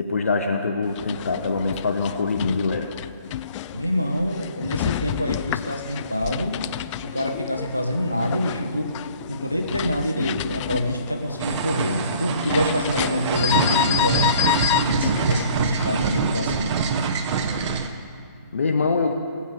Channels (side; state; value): both; inverted; correlation -0.55